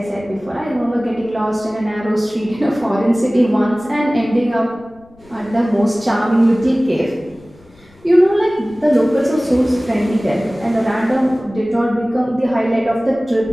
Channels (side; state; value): left; noise; rumble, 29 dB below the sound